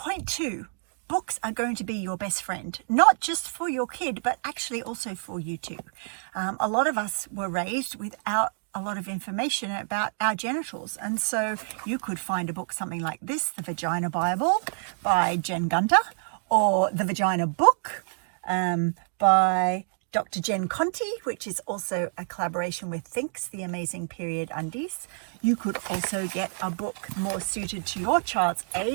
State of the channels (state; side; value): silent; left; digital silence